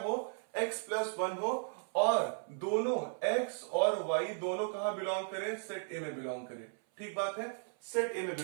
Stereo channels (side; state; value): left; silent; 54 dB below the other